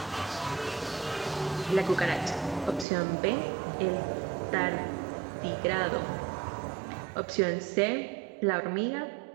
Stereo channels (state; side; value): drops out; left; at 2.9 s